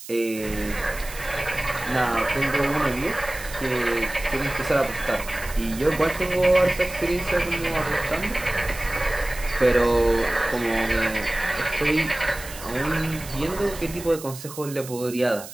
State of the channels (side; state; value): right; noise; hiss, 14 dB below the sound